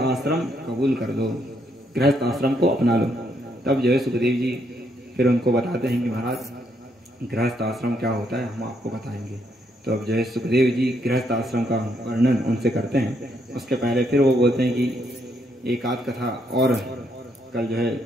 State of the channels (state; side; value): normal; both; correlation 0.74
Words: कबूल कर लो, गृहस्थ आश्रम को अपना लो। तब जो है सुखदेव जी फिर उनको बताते हैं कि महाराज गृहस्थ आश्रम क्या होता है हम आपको बताएंगे। तो अब जो है सुखदेव जी गृहस्थ आश्रम का वर्णन उनसे करते हैं। उसके पहले फिर वो बोलते हैं कि एक आध कथा और, कल जो